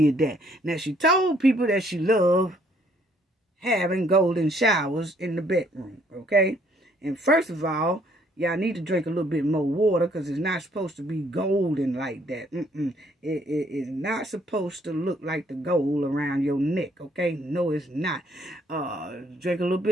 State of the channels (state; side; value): normal; both; correlation 0.65